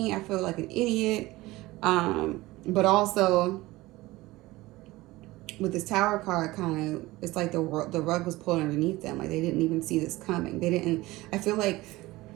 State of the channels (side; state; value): left; quieter; 19.3 dB